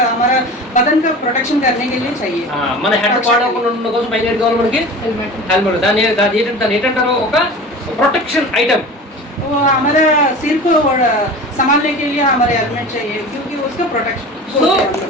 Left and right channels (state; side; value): normal; both; correlation 0.36